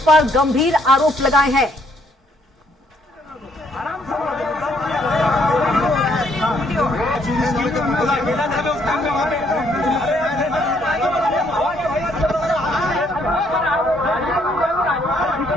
पर गंभीर आरोप लगाए हैं।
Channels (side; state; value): both; normal; correlation 0.68